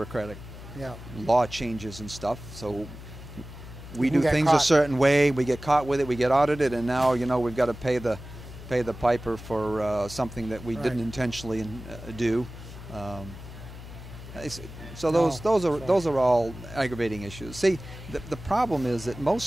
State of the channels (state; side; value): noise; left; hum, 14 dB below the sound